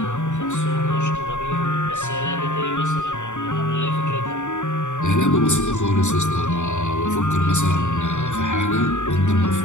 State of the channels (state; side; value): late; right; 0.85 ms